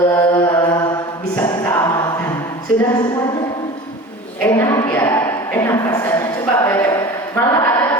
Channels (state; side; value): normal; both; correlation 0.36